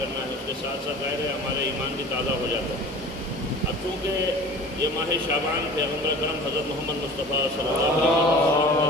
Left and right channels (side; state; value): both; normal; correlation 0.41